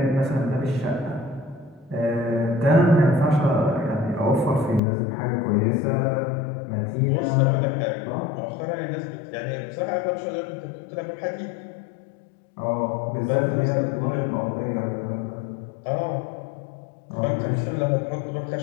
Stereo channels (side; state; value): right; drops out; at 4.8 s